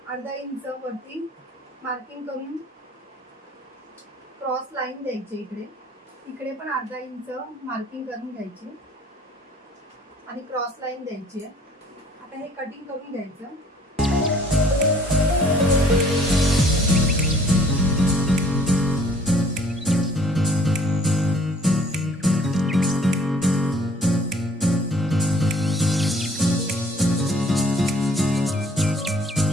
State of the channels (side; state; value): both; normal; correlation 0.56